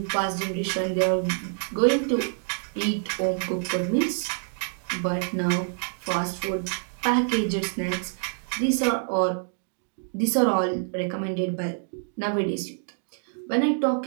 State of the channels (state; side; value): silent; left; digital silence